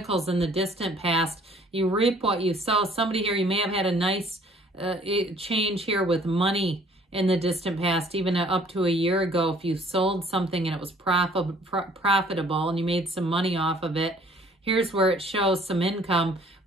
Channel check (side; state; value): both; normal; correlation 0.57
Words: in the distant past, you reap what you sow. Somebody here, you may have had a nice change here with money in the distant past, even up to a year ago. If you sold something and it was profitable and you made some money off of it, here's where it shows some income.